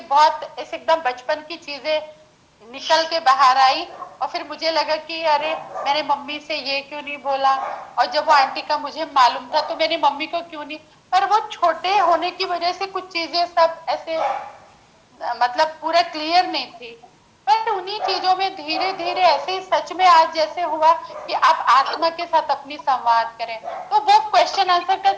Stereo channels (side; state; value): both; identical; correlation 1.00